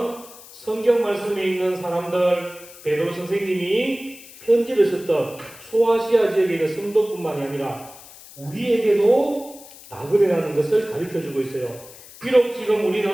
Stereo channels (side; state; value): left; noise; hiss, 19 dB below the sound